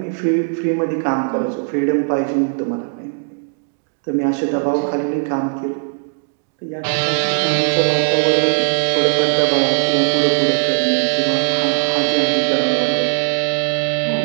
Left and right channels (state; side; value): silent; left; digital silence